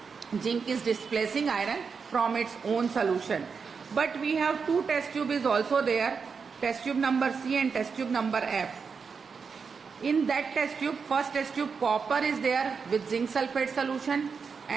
Zinc is displacing iron from its own solution. But we have 2 test tube is also there, test tube number C and test tube number F. In that test tube, first test tube, copper is there with zinc sulfate solution,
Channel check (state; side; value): quieter; left; 5.6 dB